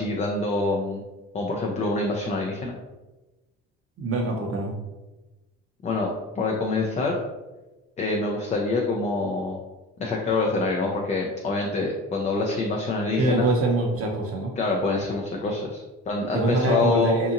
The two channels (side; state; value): both; normal; correlation 0.36